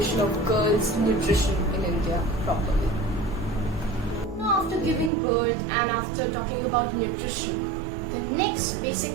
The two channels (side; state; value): left; drops out; at 5.1 s